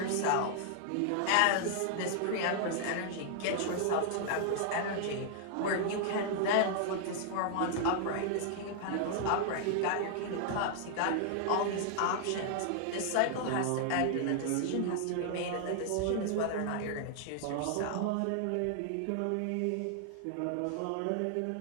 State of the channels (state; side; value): different; both; correlation -0.01